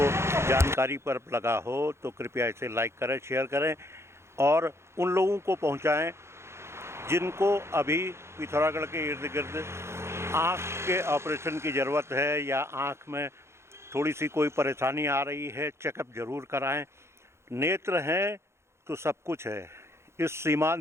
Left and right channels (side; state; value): left; late; 0.13 ms